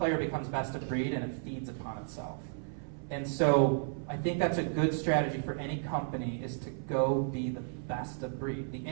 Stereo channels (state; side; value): silent; left; 56 dB below the other